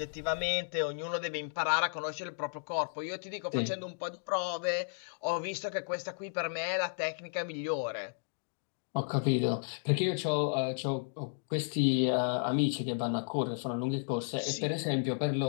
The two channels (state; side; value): silent; right; digital silence